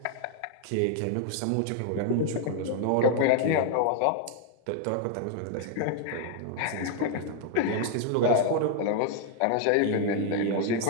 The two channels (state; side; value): different; both; correlation 0.00